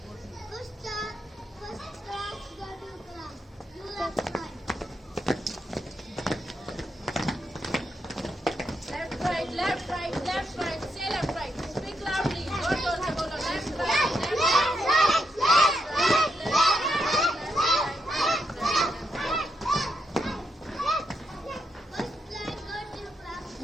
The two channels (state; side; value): normal; both; correlation 0.81